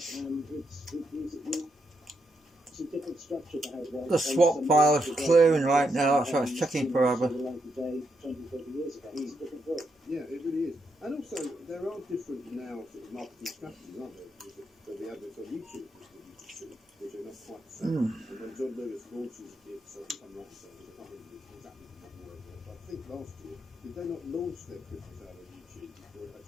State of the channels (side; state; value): both; normal; correlation 0.81